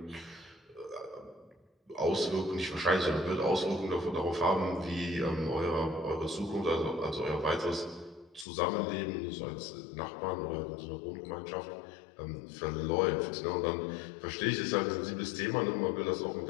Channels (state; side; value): drops out; right; at 8.5 s